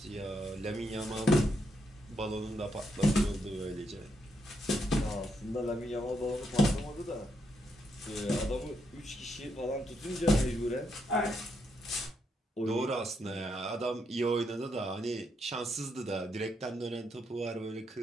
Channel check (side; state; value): both; normal; correlation 0.78